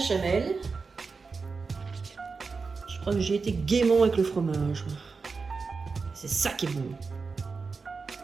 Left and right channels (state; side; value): quieter; left; 4.6 dB